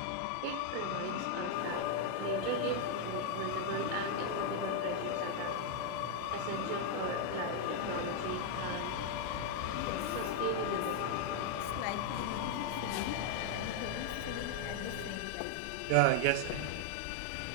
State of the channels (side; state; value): both; different; correlation 0.00